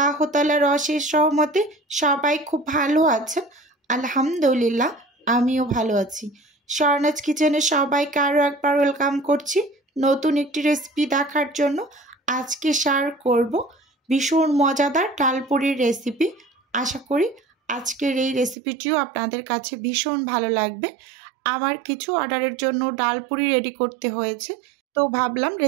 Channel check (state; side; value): drops out; left; at 18.6 s